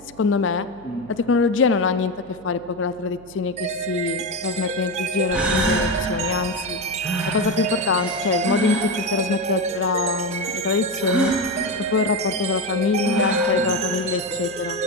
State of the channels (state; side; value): noise; right; hum, 22 dB below the sound